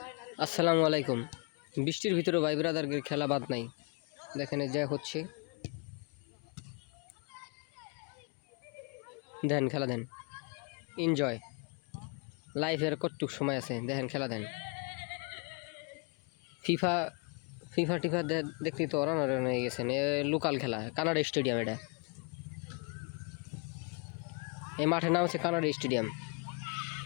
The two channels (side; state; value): right; quieter; 34.1 dB